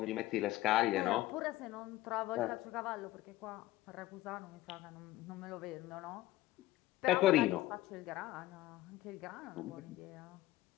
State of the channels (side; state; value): right; quieter; 16.3 dB